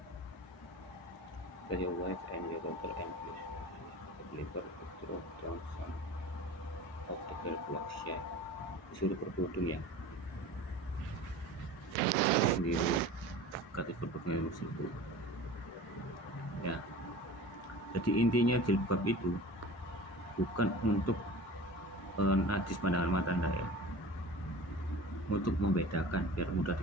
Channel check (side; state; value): both; normal; correlation 0.38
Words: Your wife and your daughter and the believer throw down some of the girl blocks ya. Disuruh berkerudung ya. Sendiri kata berkerudung tersebut. Ya, jadi intinya jilbab itu bukan untuk najis pandangan mata Anda ya, untuk membedakan biar mudah